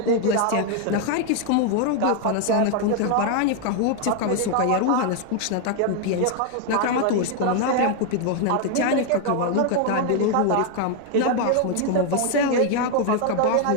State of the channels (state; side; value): different; both; correlation 0.00